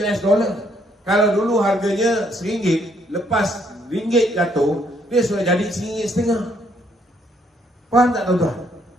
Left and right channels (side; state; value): both; normal; correlation 0.69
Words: US dollar. Kalau dulu harganya RM1, lepas ringgit jatuh, dia sudah jadi RM1.50. Faham tak tuan-tuan?